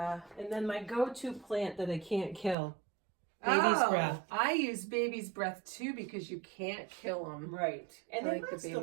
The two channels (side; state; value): left; drops out; at 2.6 s